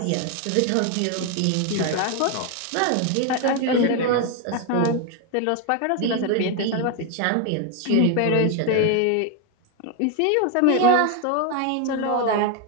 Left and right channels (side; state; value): both; different; correlation 0.01